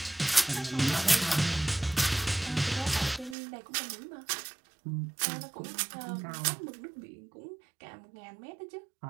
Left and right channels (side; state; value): left; drops out; at 3.4 s